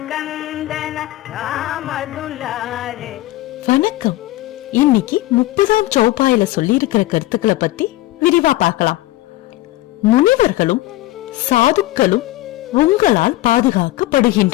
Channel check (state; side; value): quieter; right; 16.8 dB